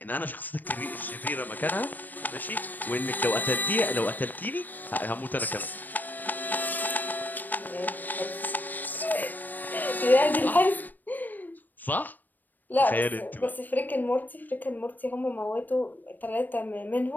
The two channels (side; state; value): right; late; 0.088 ms